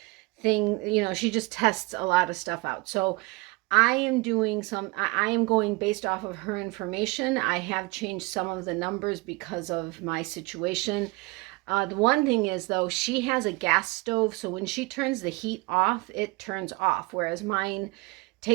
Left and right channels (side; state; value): left; quieter; 24.8 dB